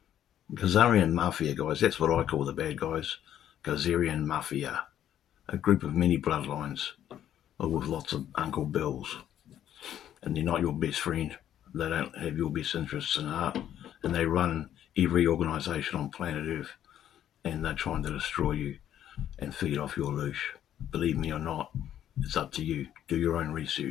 Khazarian Mafia, guys, that's what I call the bad guys. Khazarian Mafia. A group of many bloodlines with lots of Uncle Bills. And they're not your best friend. They don't have your best interests in heart. And they run every organisation on planet Earth. And they're trying to destroy you and feed off your loosh. Believe me or not, it's up to you. Do your own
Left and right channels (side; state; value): right; quieter; 10.9 dB